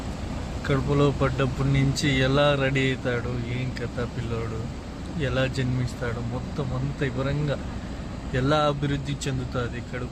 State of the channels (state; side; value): identical; both; correlation 1.00